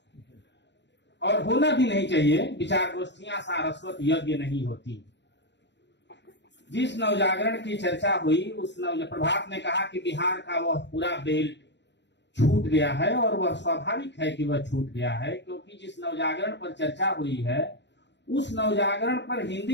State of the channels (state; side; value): late; right; 0.51 ms